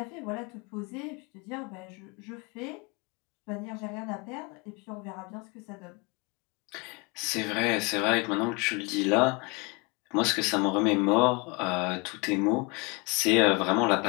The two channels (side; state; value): right; quieter; 28.7 dB